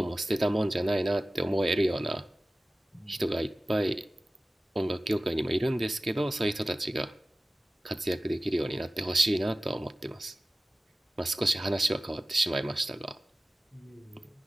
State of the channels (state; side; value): normal; both; correlation 0.97